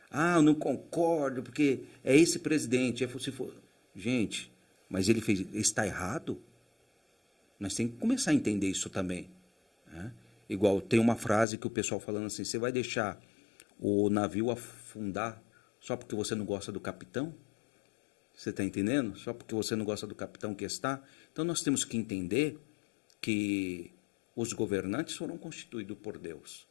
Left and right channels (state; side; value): drops out; right; at 11.5 s